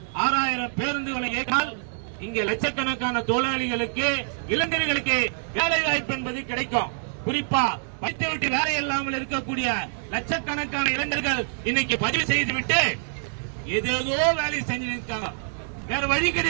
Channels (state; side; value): silent; left; digital silence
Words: 6000 பேருந்துகளை இயக்கால் இங்கே லட்சக்கணக்கான தொழிலாளிகளுக்கு இளைஞர்களுக்கு வேலை வாய்ப்பு என்பது கிடைக்கும். குறிப்பா படித்துவிட்டு வேலை இல்லாமல் இருக்கக்கூடிய லட்சக்கணக்கான இளைஞர்கள் இன்னைக்கு பதிவு செய்துவிட்டு ஏதேதோ வேலை செஞ்சு இருக்காங்க. வேற வழி